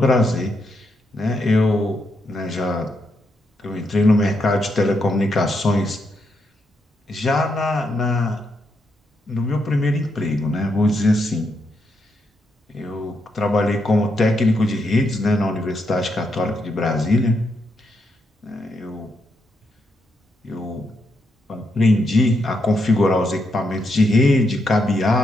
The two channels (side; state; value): both; normal; correlation 0.80